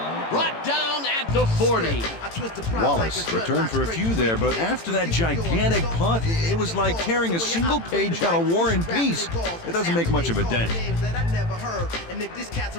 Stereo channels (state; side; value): late; right; 18 ms